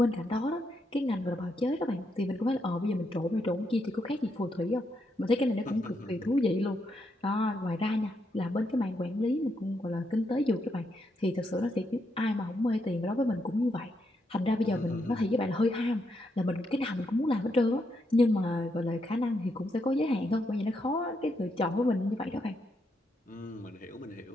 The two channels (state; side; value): normal; both; correlation 0.80